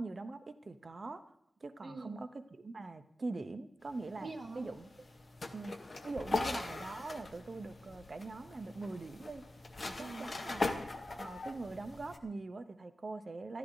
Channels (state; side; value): normal; both; correlation 0.92